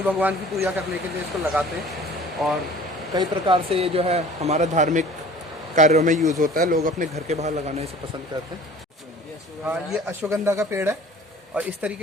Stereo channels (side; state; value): both; normal; correlation 0.46